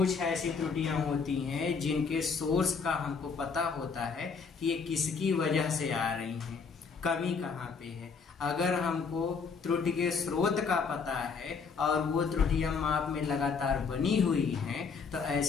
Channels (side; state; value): right; quieter; 5.4 dB